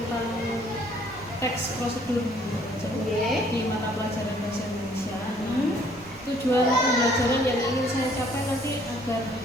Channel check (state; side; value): noise; right; rumble, 23 dB below the sound